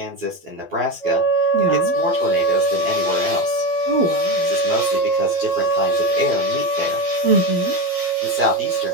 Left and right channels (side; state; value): left; late; 12 ms